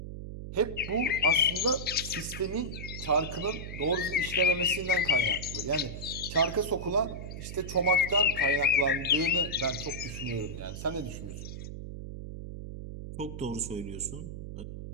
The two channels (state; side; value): noise; right; hum, 9 dB below the sound